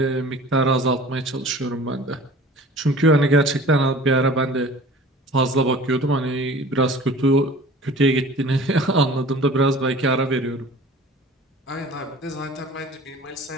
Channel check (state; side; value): normal; both; correlation 0.44